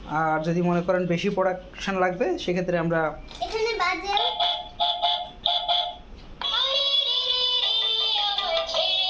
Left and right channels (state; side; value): identical; both; correlation 1.00